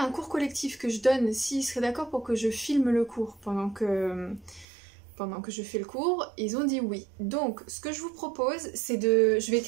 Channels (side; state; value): left; drops out; at 4.7 s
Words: un cours collectif que je donne s'ils seraient d'accord pour que je filme le cours pendant que je fais le cours. Ils ont dit oui. Donc, ce que je vous propose, c'est de... Je vais